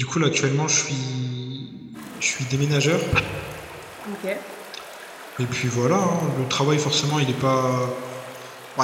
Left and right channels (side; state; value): both; identical; correlation 1.00